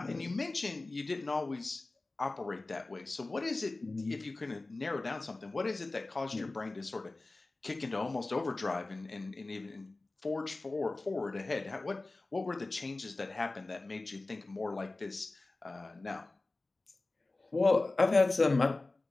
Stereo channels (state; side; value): quieter; right; 3.1 dB